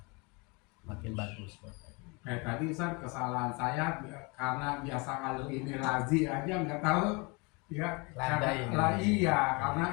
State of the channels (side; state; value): right; quieter; 29.0 dB